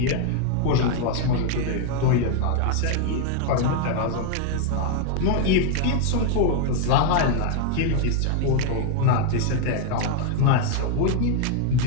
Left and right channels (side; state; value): both; different; correlation 0.00